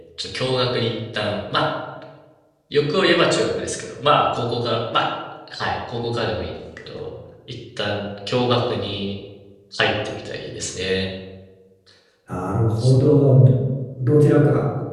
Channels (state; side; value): identical; both; correlation 1.00